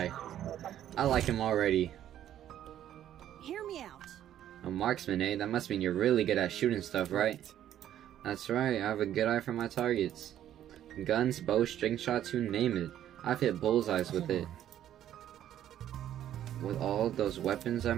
him already. Hear me out. A marksman, eh? That must mean you're really good at shooting stuff, right? That's right, I have a good eye for my targets. Guns, bows, string shots, you name it. I've hit bullseyes with it. With all those weapons, I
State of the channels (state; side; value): quieter; left; 11.3 dB